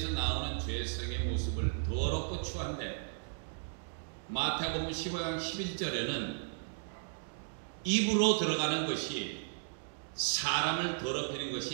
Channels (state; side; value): silent; left; digital silence